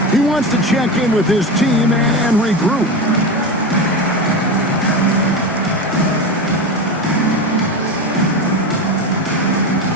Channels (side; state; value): both; normal; correlation 0.21